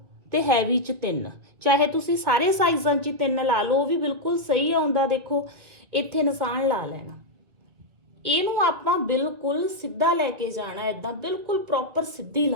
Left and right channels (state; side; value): late; left; 1.9 ms